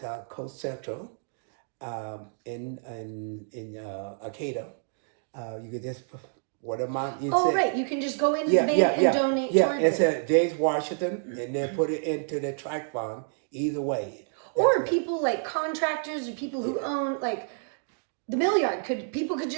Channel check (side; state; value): left; silent; digital silence